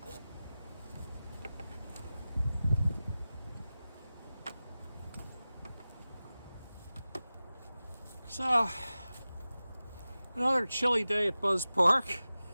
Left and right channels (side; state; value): both; inverted; correlation -0.96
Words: So, another chilly day at Buzz Park.